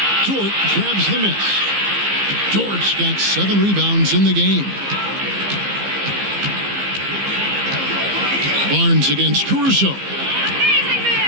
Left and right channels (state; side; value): late; left; 15 ms